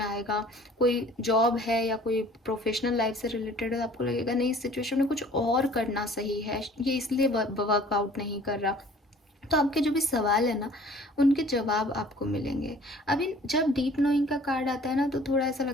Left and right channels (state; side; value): normal; both; correlation 0.51